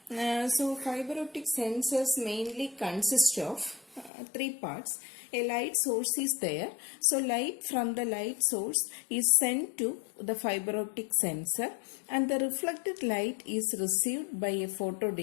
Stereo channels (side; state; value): right; drops out; at 4.1 s